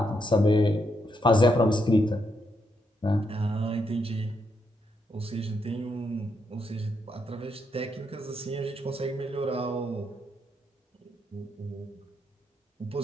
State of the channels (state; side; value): normal; both; correlation 0.79